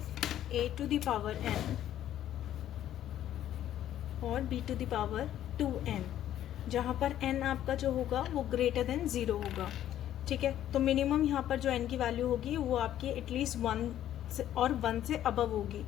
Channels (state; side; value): quieter; right; 11.8 dB